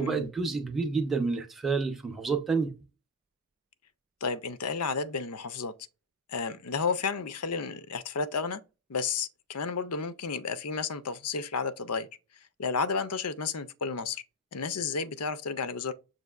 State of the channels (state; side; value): normal; both; correlation 0.04